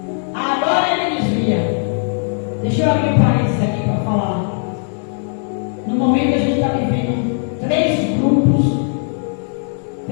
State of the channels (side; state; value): right; silent; 58 dB below the other